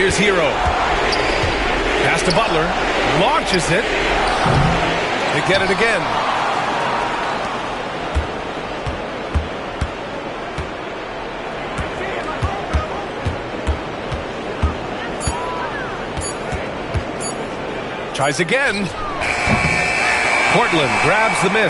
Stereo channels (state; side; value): identical; both; correlation 1.00